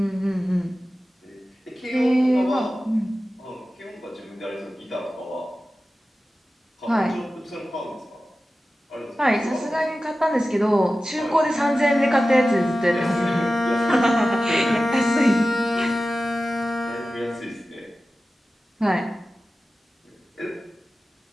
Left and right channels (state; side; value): normal; both; correlation 0.95